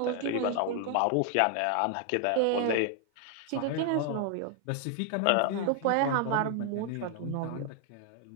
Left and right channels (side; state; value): both; different; correlation 0.00